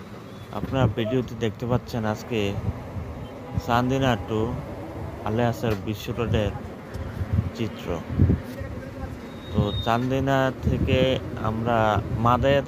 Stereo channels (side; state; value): both; identical; correlation 1.00